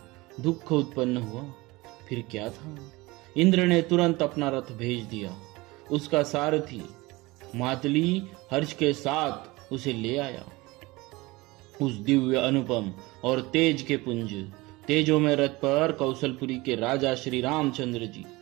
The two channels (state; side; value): quieter; left; 22.0 dB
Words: दुख उत्पन्न हुआ। फिर क्या था, इंद्र ने तुरंत अपना रथ भेज दिया। उसका सारथी मातली हर्ष के साथ उसे ले आया। उस दिव्य अनुपम और तेज के पुंज तेजों में रथ पर कौशलपुरी के राजा श्री रामचंद्र जी